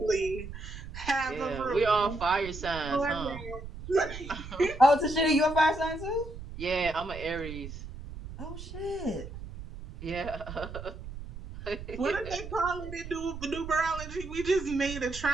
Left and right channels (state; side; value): noise; right; rumble, 11 dB below the sound